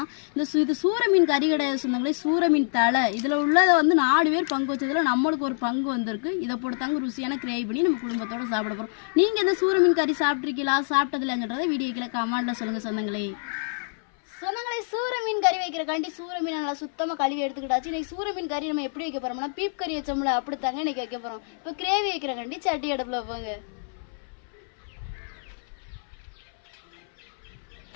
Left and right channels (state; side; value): silent; right; 61 dB below the other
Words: இது சூர மீன் கறி கிடையாது சொந்தங்களே, சூர மீன் தலை. இதில் உள்ளதை வந்து 4 பேர் பங்கு வச்சதில் நம்மளுக்கு ஒரு பங்கு வந்திருக்கு. இதை போட்டுத்தாங்க ருசியான கிரேவி பண்ணி நம்ம குடும்பத்தோடு சாப்பிட போகிறோம். நீங்கள் இந்த சூர மீன் கறி சாப்பிட்ருக்கீங்களா, சாப்பிட்டதில்லைன்றதை வீடியோக்கில் கமெண்ட்டில் சொல்லுங்கள் சொந்தங்களே. சொந்தங்களை சூர மீன் கறி வைக்கிறக்காண்டி சூர மீன் நல்லா சுத்தமாக கழுவி எடுத்துக்கிட்டாச்சு. இன்றைக்கி சூர மீன் கறி நம்ம எப்படி வைக்க போகிறோம்னா, பீப் கறி வச்சோம்ல அப்படித்தாங்க இன்றைக்கி வைக்க போகிறோம். இப்போ கிரேவி வைக்கிறக்காண்டி சட்டி அடுப்பில் வைப்பாங்க.